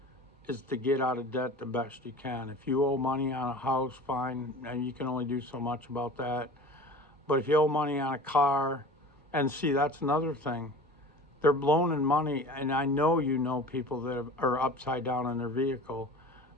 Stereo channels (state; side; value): normal; both; correlation 0.39